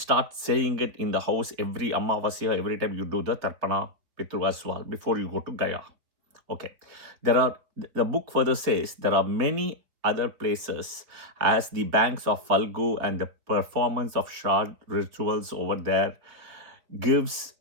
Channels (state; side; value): late; left; 4.0 ms